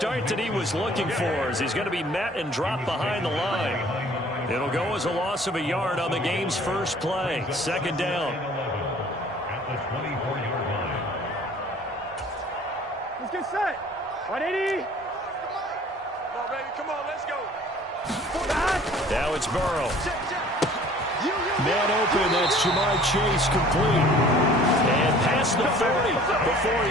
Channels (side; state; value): both; normal; correlation 0.51